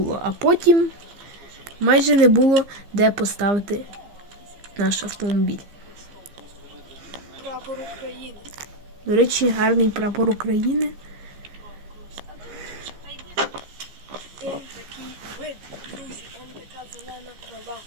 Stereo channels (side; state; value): left; late; 15 ms